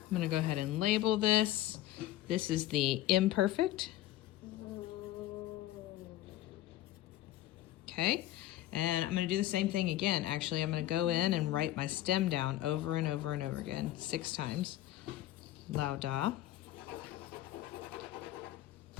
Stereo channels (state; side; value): quieter; right; 14.5 dB